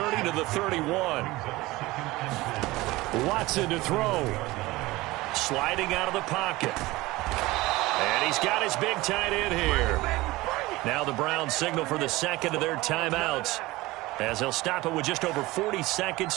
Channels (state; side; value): quieter; left; 19.8 dB